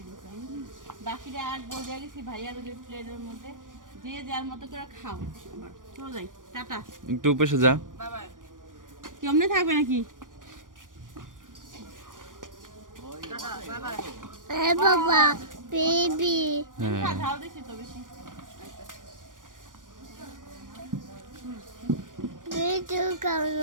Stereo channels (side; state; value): left; late; 0.88 ms